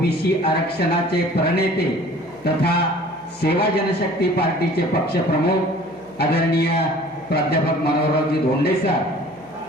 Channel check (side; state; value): right; noise; hum, 29 dB below the sound